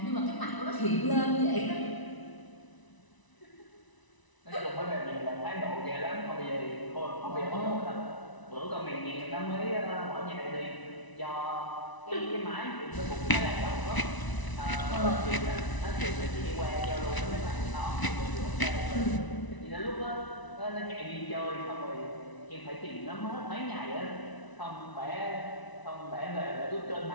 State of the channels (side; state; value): right; late; 1.0 ms